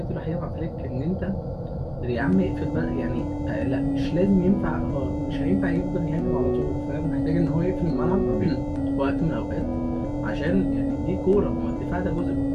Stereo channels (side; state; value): both; identical; correlation 1.00